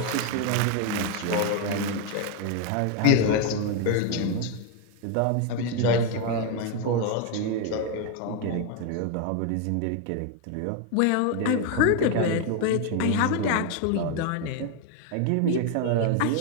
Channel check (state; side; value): different; both; correlation 0.01